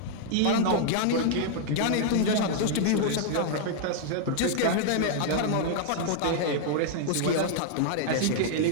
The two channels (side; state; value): both; different; correlation 0.00